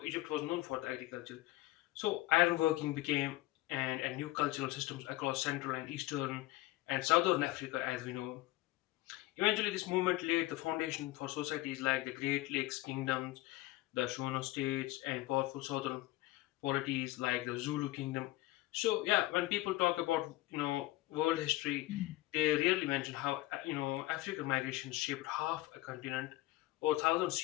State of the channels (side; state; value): right; quieter; 18.0 dB